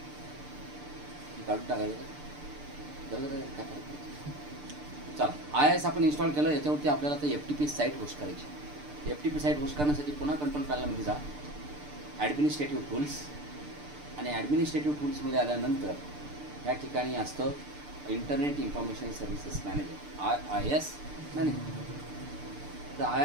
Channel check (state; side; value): late; left; 6.8 ms